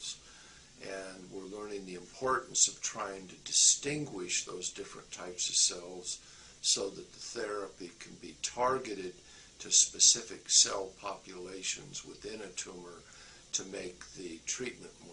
And we're learning the importance of trying to distinguish those different types of cells so that the therapy can be targeted to specific cell populations within a tumor to make the treatment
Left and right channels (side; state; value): both; identical; correlation 1.00